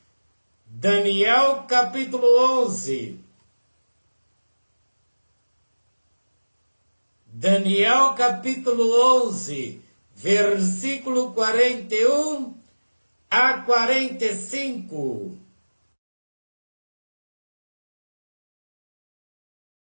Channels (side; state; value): both; inverted; correlation -1.00